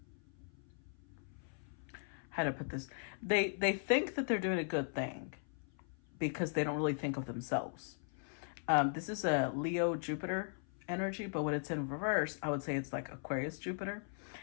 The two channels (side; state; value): right; silent; 52 dB below the other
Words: how to put this, they think that they're doing a good thing because they don't really think of themselves. This is a Leo Jupiter energy, but when it's in reverse, I would say it's like Aquarius Jupiter,